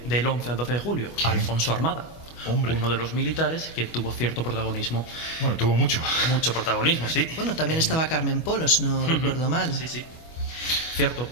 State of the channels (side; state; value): right; late; 25 ms